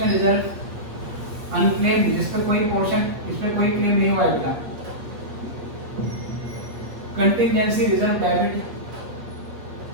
reserve unclaimed, जिस पर कोई पोर्शन, इस पर कोई क्लेम नहीं हुआ है बेटा, कंटिजेंसी रिजर्व डेबिट,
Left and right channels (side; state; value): left; late; 8.4 ms